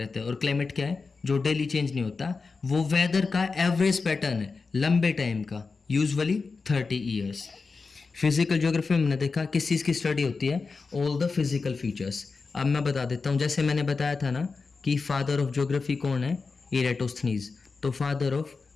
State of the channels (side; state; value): right; quieter; 4.4 dB